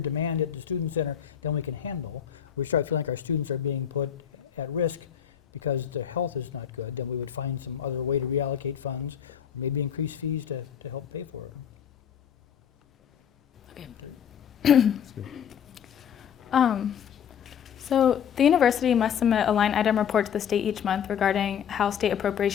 demand at the student center than we can handle, we start feeling like our students are being put at risk because their health is not good, then we would find some other way to reallocate funds or maybe increase fees to help pay for it. So the university must submit a line item report to the state each month regarding how state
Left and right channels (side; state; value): right; quieter; 8.6 dB